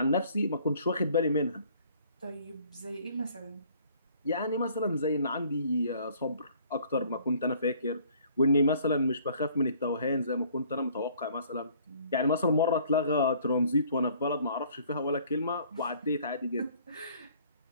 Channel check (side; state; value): both; inverted; correlation -0.58